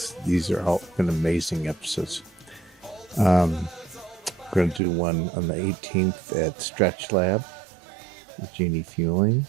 these are all been amazing episodes. We're going to do one on the 18th at Stretch Lab with Jeannie Fueling,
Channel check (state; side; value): drops out; left; at 4.8 s